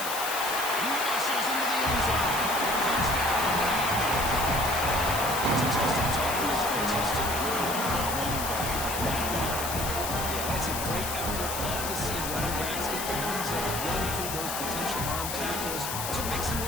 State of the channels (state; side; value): noise; left; hiss, 4 dB below the sound